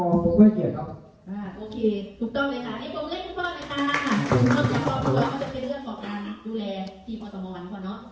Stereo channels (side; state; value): both; identical; correlation 1.00